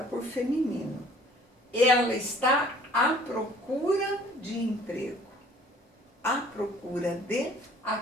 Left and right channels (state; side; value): normal; both; correlation 0.54